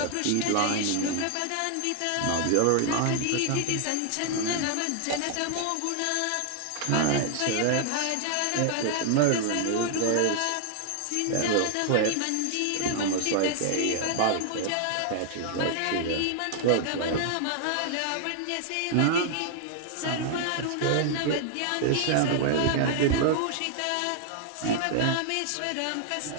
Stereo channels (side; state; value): both; different; correlation 0.00